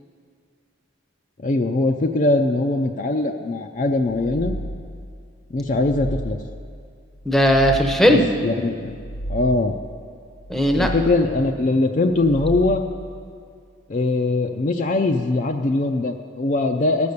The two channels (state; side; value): normal; both; correlation 0.56